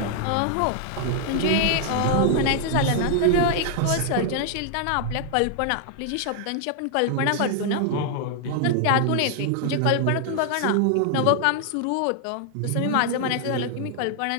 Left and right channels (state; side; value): different; both; correlation 0.00